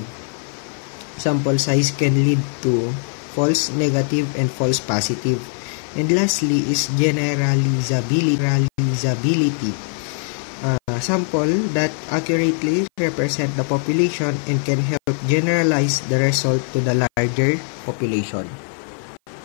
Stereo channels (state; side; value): silent; right; 55 dB below the other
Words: Sample size can lead to false negative and false positive. And lastly is generalizability. Sample that accurately represent the population and can help generalize the result to the larger population.